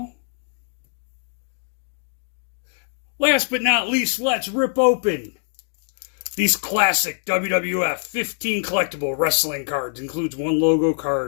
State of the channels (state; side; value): silent; right; digital silence